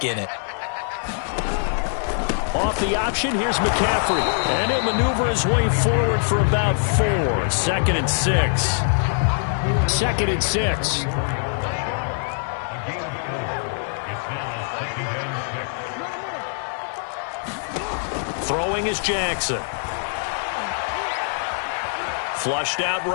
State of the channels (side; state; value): right; silent; digital silence